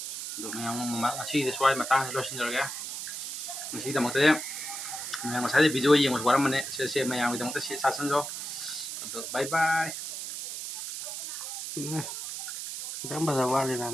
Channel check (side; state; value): right; noise; hiss, 6 dB below the sound